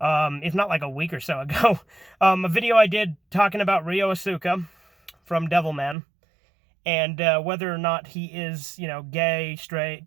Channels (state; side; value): drops out; left; at 6.0 s